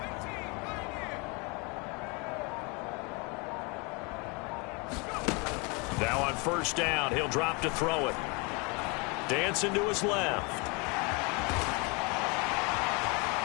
Now on first down, he'll drop to throw it. Dancing to his left.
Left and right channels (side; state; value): right; quieter; 30.2 dB